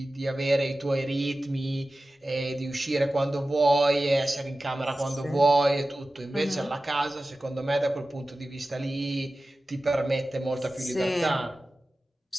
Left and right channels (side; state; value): both; normal; correlation 0.95